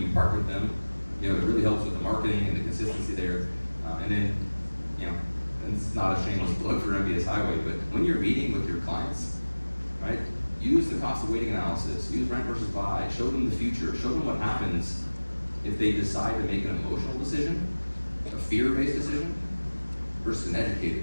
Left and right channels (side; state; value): both; inverted; correlation -1.00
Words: partner with them, it really helps with the marketing and the consistency there. And then, and it's not a shameless plug for MBS Highway, but when you're meeting with your clients, right, use the cost of waiting analysis, use rent versus buy, show them the future, show them what happens if they decide to make an emotional decision, a fear-based decision, versus an educated